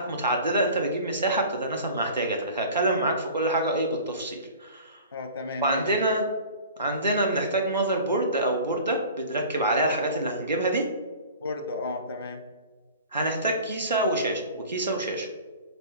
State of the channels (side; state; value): both; inverted; correlation -0.42